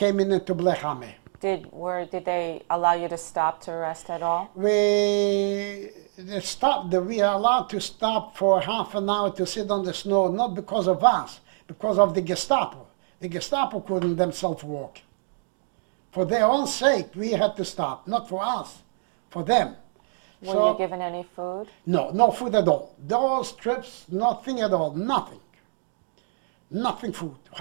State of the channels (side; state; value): left; silent; digital silence